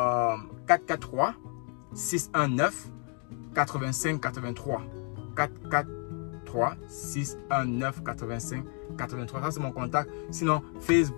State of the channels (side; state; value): right; quieter; 40.0 dB